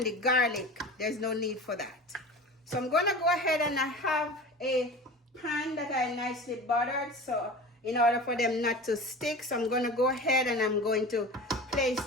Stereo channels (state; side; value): normal; both; correlation 0.34